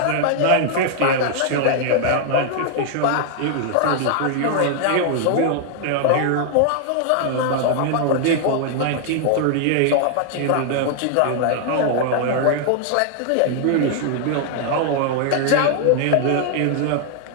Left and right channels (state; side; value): different; both; correlation 0.00